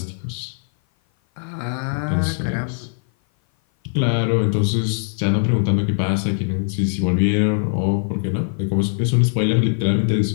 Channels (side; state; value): right; silent; 57 dB below the other